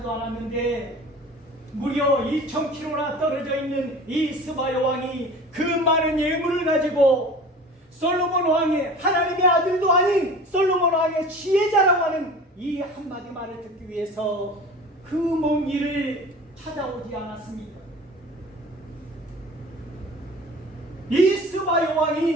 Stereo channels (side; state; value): both; normal; correlation 0.40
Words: 않았는데 무려 2000km나 떨어져 있는 이 스바 요왕이 그 많은 예물을 가지고 솔로몬 왕의 하나님의 아들도 아닌 솔로몬 왕의 지혜자라고 하는 이 한마디 말을 듣기 위해서 그 먼 길을 찾아오지 않았습니까? 이 스바